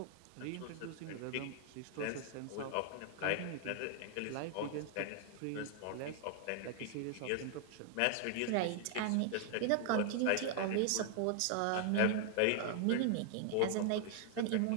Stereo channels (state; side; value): different; both; correlation 0.00